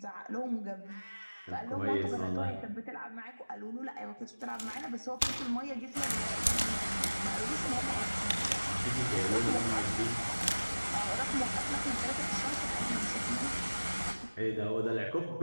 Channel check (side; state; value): both; inverted; correlation -1.00